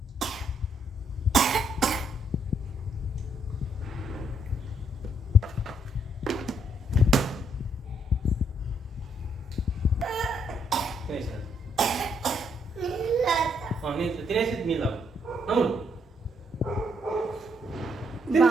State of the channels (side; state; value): both; normal; correlation 0.72